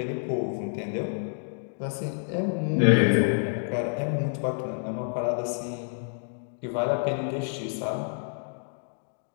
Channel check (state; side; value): silent; right; digital silence